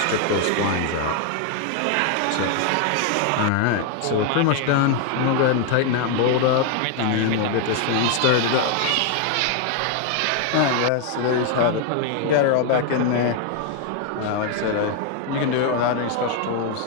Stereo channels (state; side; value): different; both; correlation 0.01